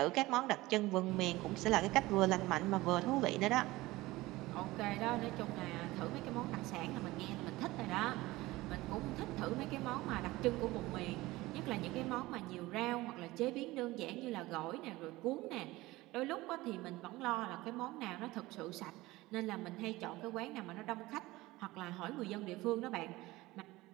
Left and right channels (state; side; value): quieter; left; 19.3 dB